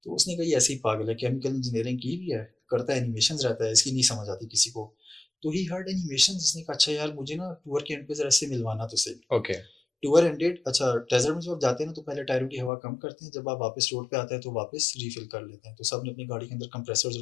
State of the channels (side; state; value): right; drops out; at 12.7 s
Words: तो उसने कहा ये ऐसे ही पागल है, केमिकल इंजीनियरिंग की भी है, करता है एनिमेशंस रहता है, इसकी नहीं समझ आती किसी को। तो ही हर्ड एनिमेशंस, उसने कहा अच्छा यार मुझे ना टूर के एंड पे जरा से मिलवाना तो सही। Okay. टूर एंडेड, अच्छा डेजर्ट में जब आप जाते हैं ना तो पहले टायरों की हवा कम करते हैं, जब आप वापस रोड पे आते हैं तो वापस रिफिल कर लेते हैं। तो सब ने अपनी गाड़ी के अंदर कंप्रेसर्स